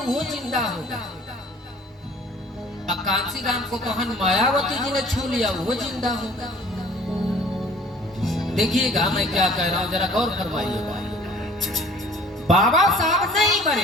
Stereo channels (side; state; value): both; normal; correlation 0.51